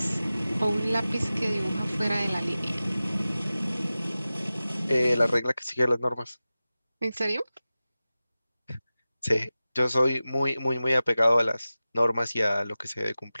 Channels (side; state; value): both; inverted; correlation -0.96